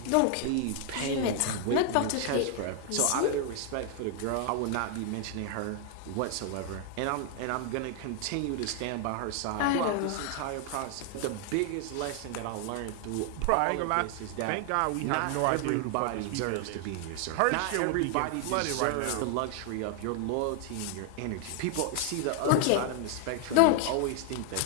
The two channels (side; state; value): both; different; correlation 0.00